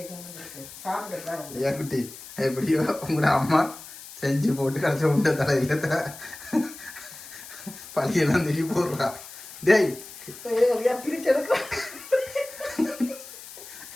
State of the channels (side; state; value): left; noise; hiss, 15 dB below the sound